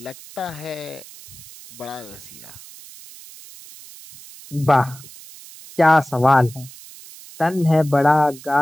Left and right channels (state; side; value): noise; right; hiss, 18 dB below the sound